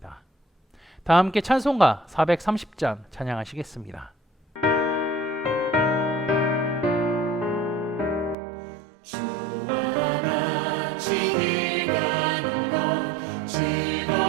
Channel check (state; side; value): drops out; left; at 8.3 s